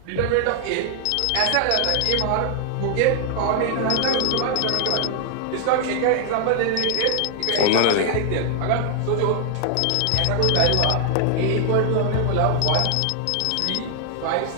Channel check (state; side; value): different; both; correlation 0.00